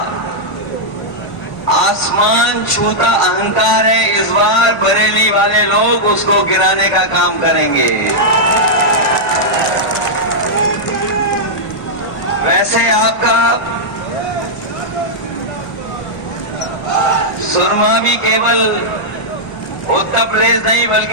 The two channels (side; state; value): right; late; 1.4 ms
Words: आसमान छूता अहंकार है, इस बार बरेली वाले लोग उसको गिराने का काम करेंगे। वैसे आपका सुरमा भी केवल उत्तर प्रदेश नहीं